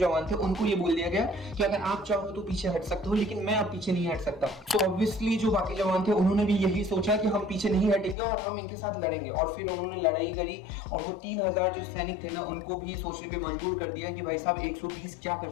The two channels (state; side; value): drops out; right; at 8.2 s